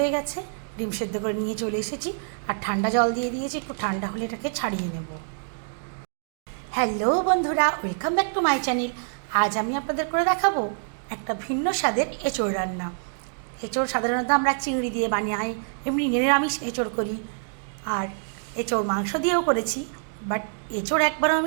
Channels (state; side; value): silent; left; digital silence